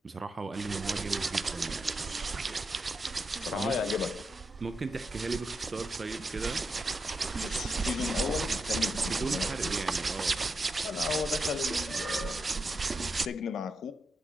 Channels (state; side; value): normal; both; correlation 0.85